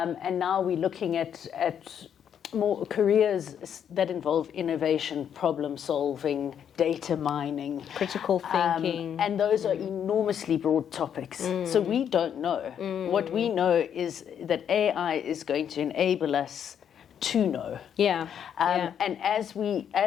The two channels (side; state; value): right; quieter; 8.7 dB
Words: now we're looking at more careers that involve innovation, problem solving, data mining, critical thinking, and those are enormously broad topics. So we don't know. What we know is that AI is going to enable us to know. And as